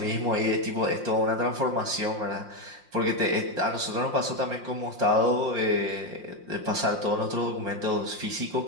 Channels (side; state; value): left; late; 5.6 ms